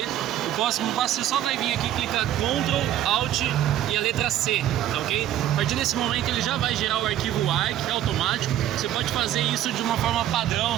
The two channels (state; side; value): quieter; left; 12.0 dB